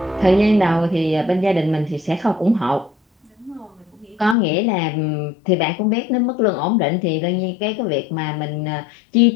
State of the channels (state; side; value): drops out; right; at 4.4 s